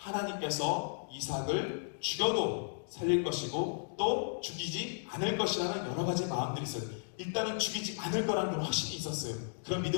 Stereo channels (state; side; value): silent; right; digital silence